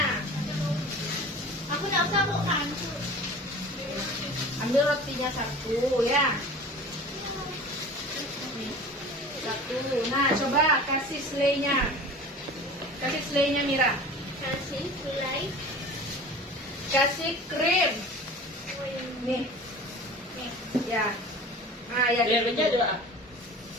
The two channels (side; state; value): both; normal; correlation 0.39